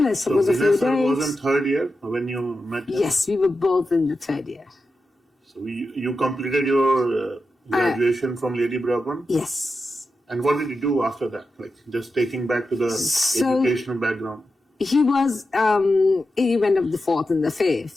I suppose so a few days. Vanessa was in third year when you met him? Yes, we were both in the third year. So you completed your graduation from Lady Bourbon? Yes. And what did you do after that? Like, just taking back to the educational background. He was, he went up the fourth and the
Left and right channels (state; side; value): normal; both; correlation 0.90